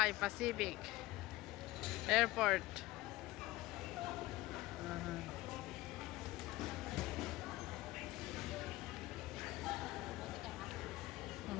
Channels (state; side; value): quieter; right; 18.3 dB